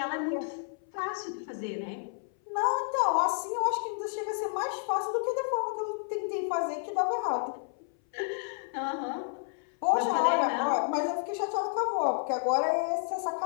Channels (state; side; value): silent; right; 57 dB below the other